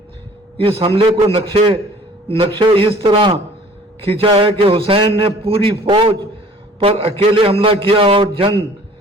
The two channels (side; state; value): both; normal; correlation 0.51